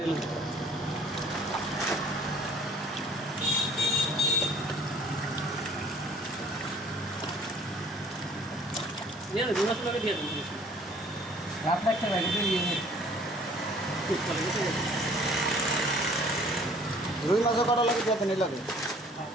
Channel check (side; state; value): both; normal; correlation 0.54